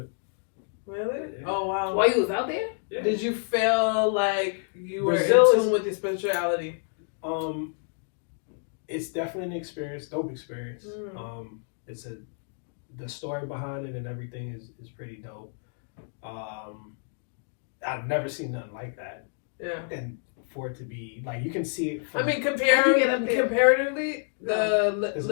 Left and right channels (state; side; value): silent; right; 59 dB below the other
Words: it. Really? Yeah. Oh wow. While you was out there? Yeah. Did you feel like you were Brazil in tune with your spirituality? It's definitely an experience, dope experience. Mm. The story behind it and everything is pretty dope. I've never seen nothing like that. Yeah. And for it to be like you can see it. I mean, comparatively, the There's